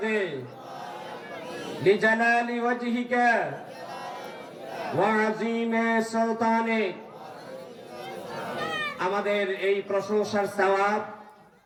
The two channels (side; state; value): both; identical; correlation 1.00